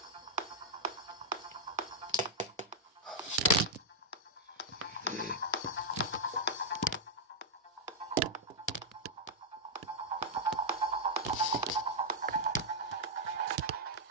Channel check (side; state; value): both; normal; correlation -0.04